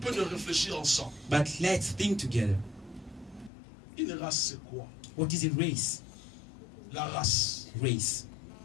de réfléchir ensemble. But let's think together. Une race, c'est quoi? What is a race? La race. Race.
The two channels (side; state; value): right; drops out; at 3.5 s